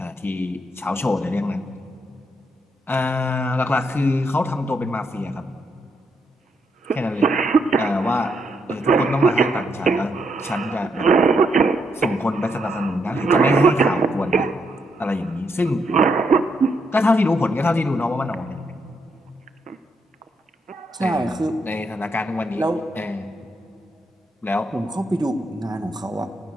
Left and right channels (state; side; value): normal; both; correlation 0.78